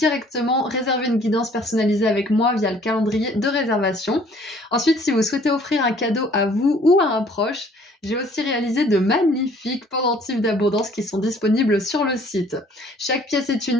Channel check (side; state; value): both; normal; correlation 0.57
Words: réserver une guidance personnalisée avec moi via le calendrier de réservation. Ensuite, si vous souhaitez offrir un cadeau à vous ou à un proche, j'ai aussi réalisé de magnifiques pendentifs d'abondance qui sont disponibles sur le site. Chaque pièce est